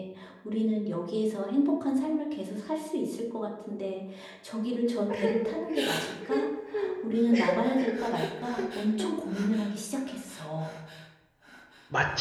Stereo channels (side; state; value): both; identical; correlation 1.00